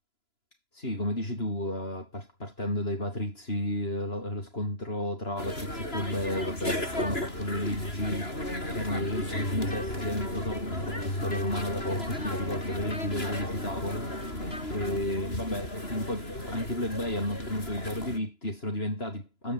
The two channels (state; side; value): late; right; 2.9 ms